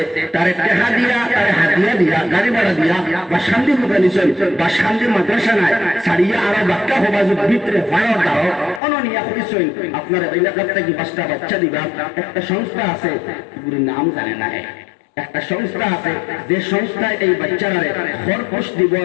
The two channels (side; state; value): right; drops out; at 8.8 s